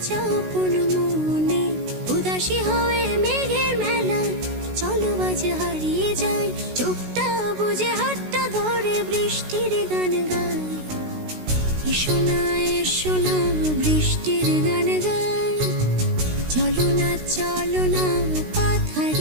আপন মনে। উদাসী হয়ে মেঘের মেলা, চলো আজ হারিয়ে যাই, চোখটা বুঝে হাতটা ধরে বৃষ্টির গান গাই। এসো না এসো না বৃষ্টির গান গাই, চলো না পথ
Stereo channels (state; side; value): late; left; 16 ms